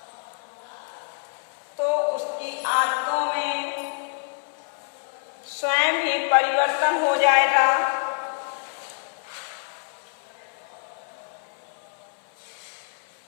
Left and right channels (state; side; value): silent; right; 59 dB below the other